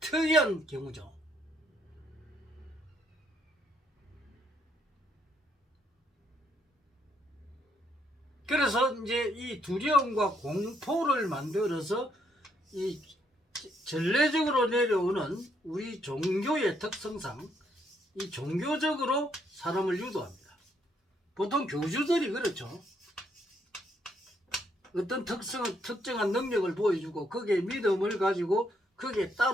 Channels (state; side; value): normal; both; correlation 0.72